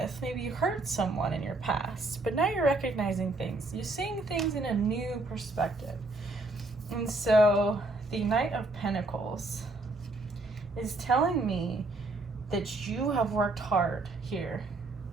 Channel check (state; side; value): quieter; left; 3.0 dB